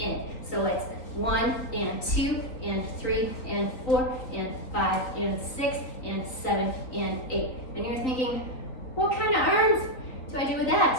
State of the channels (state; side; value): late; right; 3.9 ms